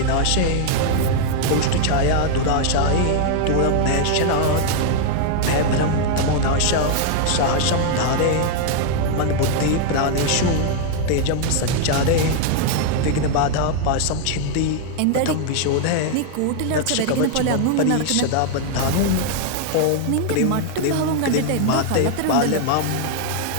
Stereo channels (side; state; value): both; different; correlation 0.00